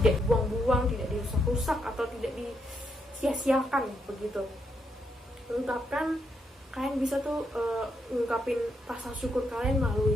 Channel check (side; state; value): both; normal; correlation 0.79